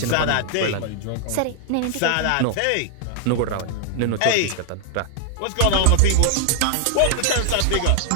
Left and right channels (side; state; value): both; different; correlation 0.00